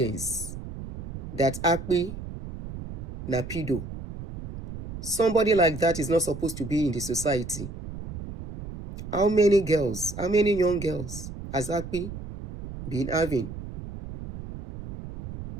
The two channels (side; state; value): right; noise; rumble, 10 dB below the sound